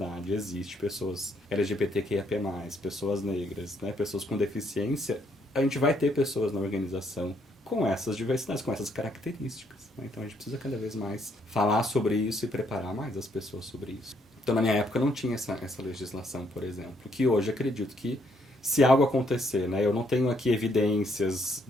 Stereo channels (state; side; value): normal; both; correlation 0.71